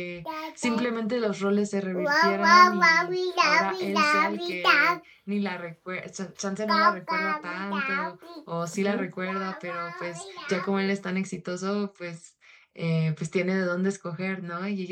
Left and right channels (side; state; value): both; identical; correlation 1.00